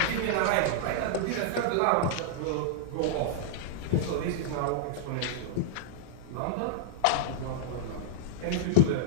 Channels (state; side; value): different; both; correlation -0.01